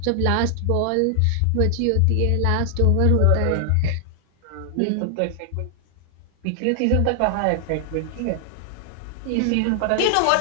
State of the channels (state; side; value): different; both; correlation 0.00